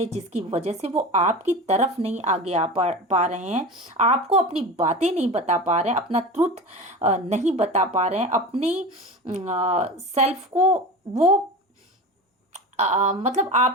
जिसकी वजह से वो आपकी तरफ नहीं आगे आ पा रहे हैं, आपको अपनी बातें नहीं बता पा रहे हैं, अपना ट्रुथ नहीं बता पा रहे हैं, अपनी सेल्फ को वो मतलब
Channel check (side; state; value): both; normal; correlation 0.30